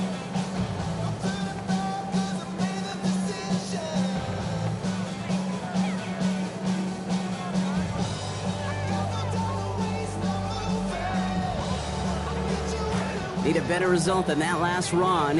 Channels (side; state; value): both; identical; correlation 1.00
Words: Need a better result than that last run.